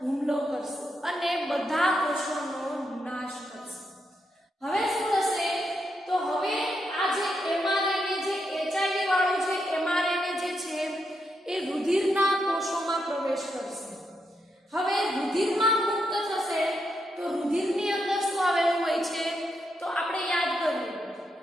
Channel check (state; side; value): normal; both; correlation 0.82